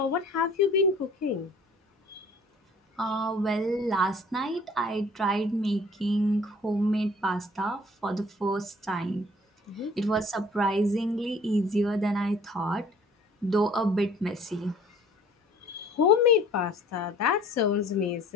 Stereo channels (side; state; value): both; normal; correlation 0.52